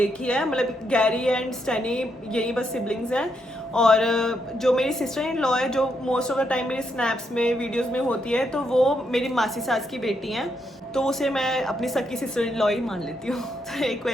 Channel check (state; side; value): normal; both; correlation 0.79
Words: ही है, मतलब गैरी एंड स्टैनी, यही बस सिबलिंग्स हैं। और जो मेरी सिस्टर इन लॉ है, जो मोस्ट ऑफ द टाइम मेरी स्नैप्स में, वीडियोस में होती है, तो वो मेरी मासी सास की बेटी हैं, तो उसे मैं अपनी सकी सिस्टर इन लॉ ही मान लेती हूँ। तो एक